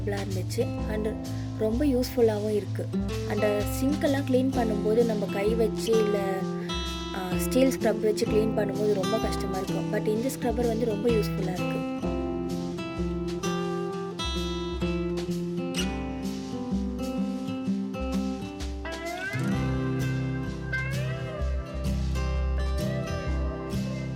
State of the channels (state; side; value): identical; both; correlation 1.00